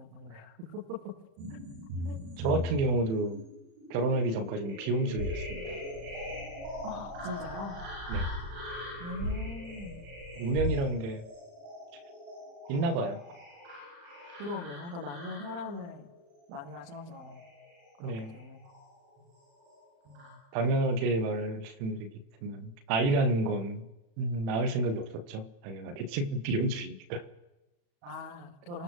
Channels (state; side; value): late; left; 36 ms